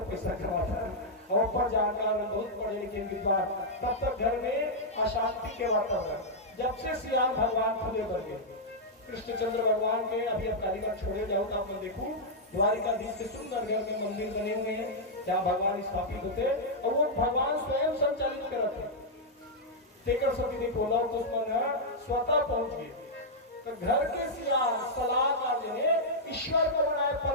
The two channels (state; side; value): normal; both; correlation -0.06